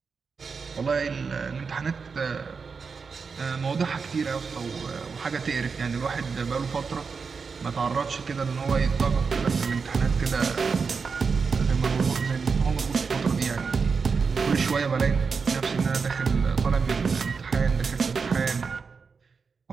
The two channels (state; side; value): quieter; left; 5.2 dB